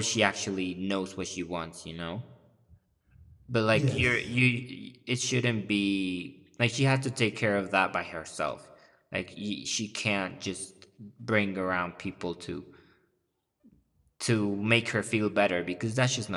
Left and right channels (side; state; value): both; identical; correlation 1.00